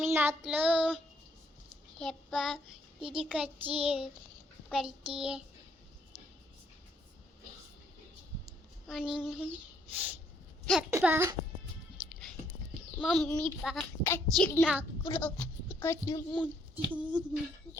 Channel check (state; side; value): normal; both; correlation 0.69